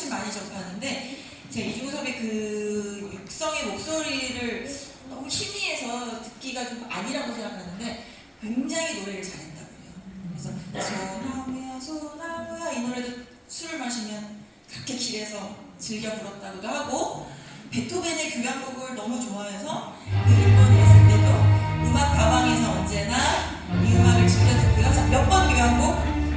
많이 접하는데, 제가 이중섭의 그 육성의 목소리를 너무 희미해서 듣기가 좀 아니라고 생각하는데 굉장히 노래를 잘했다고 해요. 그래서 소나무야 소나무야 이 노래도 술을 마시면 그렇게 길에서 즐겨 불렀다고도 하고, 베토벤의 교향곡을 너무 좋아해서 그 일본에 있을 때도 음악 가방에서 언제나 이 음악을 즐겨 듣고요. 자, 몇 번 교향곡?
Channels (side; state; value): both; identical; correlation 1.00